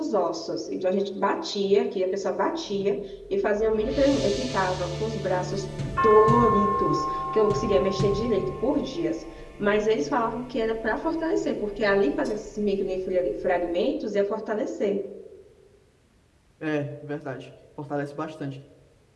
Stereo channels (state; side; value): identical; both; correlation 1.00